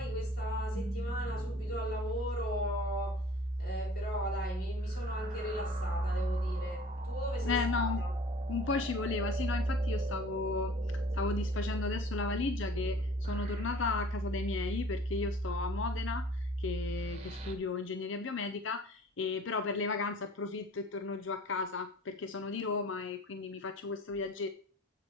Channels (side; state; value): both; normal; correlation 0.48